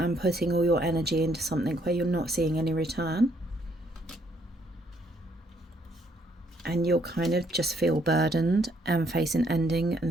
putting all your energy into something where you're not seeing any return. And you'll kind of just feel burdened and face an ending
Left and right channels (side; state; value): both; normal; correlation 0.69